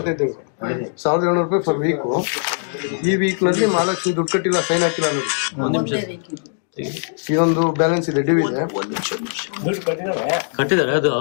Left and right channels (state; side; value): silent; right; digital silence